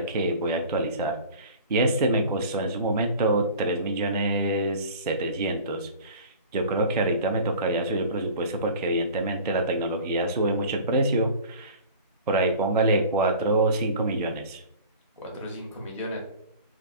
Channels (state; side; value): inverted; both; correlation -0.42